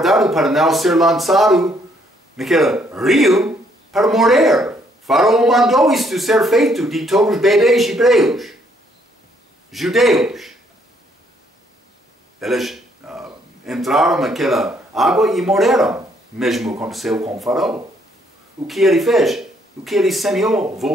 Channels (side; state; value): both; normal; correlation 0.68